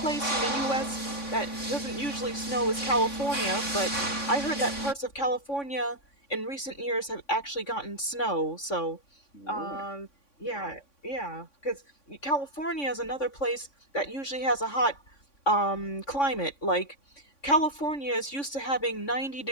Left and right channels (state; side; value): late; right; 3.6 ms